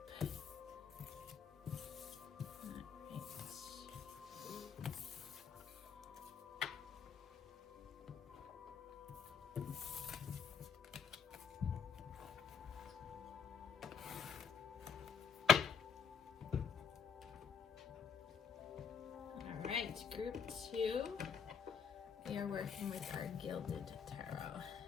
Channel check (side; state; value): right; quieter; 6.8 dB